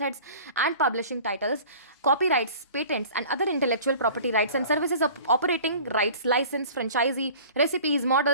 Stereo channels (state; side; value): inverted; both; correlation -0.44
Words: and publishing titles, copyrights, patents, and other intellectual property rights and services of operating rights, license, franchisee, recipes,